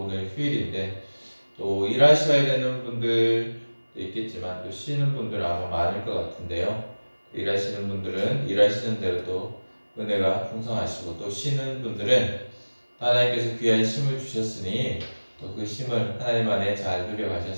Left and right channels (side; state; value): both; inverted; correlation -1.00